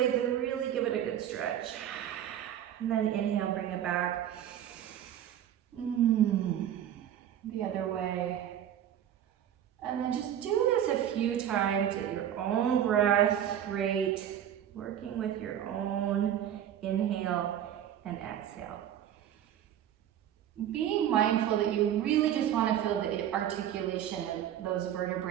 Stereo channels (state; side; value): quieter; left; 10.5 dB